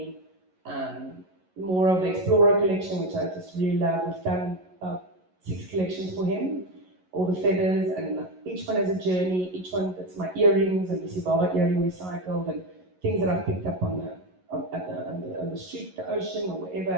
More of the Explorer collection, which I just really love. We've done about 6 collections for him. all the feathers, and each one has a journey. Each one, that's my earrings and the Sibaba earring recycled, and things that I've picked up on the street, the ocean, or wherever,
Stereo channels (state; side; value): late; left; 11 ms